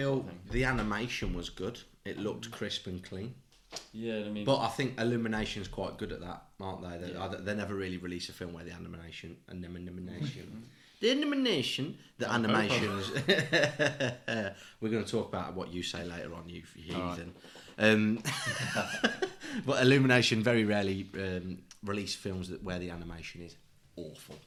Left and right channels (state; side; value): identical; both; correlation 1.00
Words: the animation was good. It looked crisp and clean. Yeah, I mean, but I think Illumination's quite good at that, aren't they? They never really release a film where the animation, the animations. We're going to talk about what you say later on, you heathen. But Illumination very rarely release films where the animation is awful.